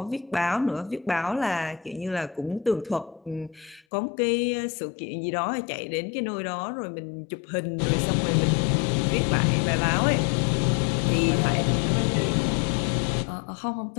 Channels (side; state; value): right; drops out; at 3.8 s